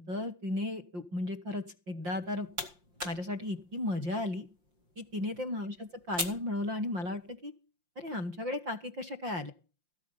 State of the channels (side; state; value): left; late; 5.7 ms